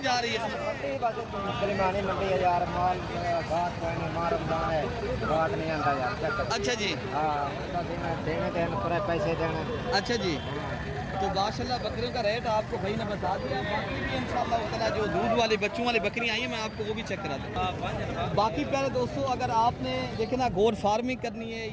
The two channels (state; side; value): identical; both; correlation 1.00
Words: जा रही है? अच्छा जी, पैसे देने। अच्छा जी। तो माशाल्लाह बकरियों का रेट आपको भाई ने बता दिया। बाकी भी इंशाल्लाह ताला जो दूध वाली बच्चों वाली बकरियां आई हैं मैं आपको वो भी चेक करा दूँ। बाकी प्यारे दोस्तों अगर आपने देखे ना गोट फार्मिंग करनी है